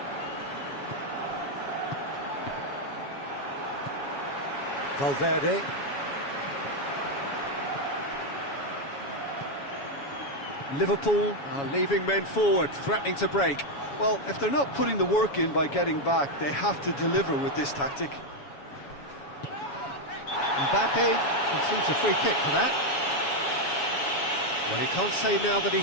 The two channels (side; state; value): right; late; 7.2 ms